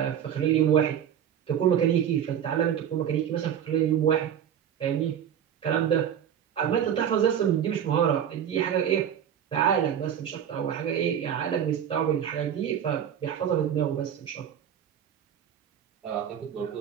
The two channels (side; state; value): left; quieter; 9.2 dB